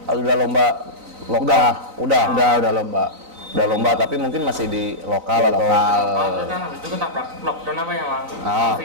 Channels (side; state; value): left; late; 3.9 ms